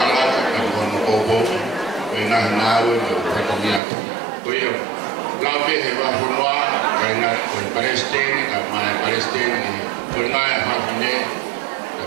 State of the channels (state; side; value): drops out; left; at 3.8 s